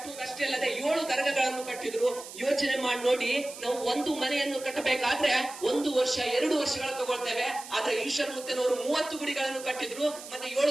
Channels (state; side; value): noise; right; hiss, 14 dB below the sound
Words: ಅಲ್ಲದೆ 7 ದರ್ಗಗಳನ್ನು ಕಟ್ಟಿದ್ರು. ಯೋಚನೆ ಮಾಡಿ ನೋಡಿ, ನಾವು ಒಂದು ಮನೆಯನ್ನು ಕಟ್ಟಬೇಕಾದ್ರೆ 1 ವರ್ಷ 2 ವರ್ಷಗಳು ತಗೊಳ್ತೇವೆ. ಆದ್ರೆ ಈಶ್ವರಮೂರ್ತಿಯವರು 30 ಗುಡಿಗಳನ್ನು ಕಟ್ಟಿದ್ರು, ಮತ್ತೆ